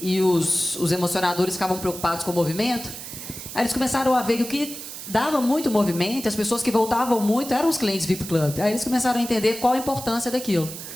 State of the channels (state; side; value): noise; right; hiss, 10 dB below the sound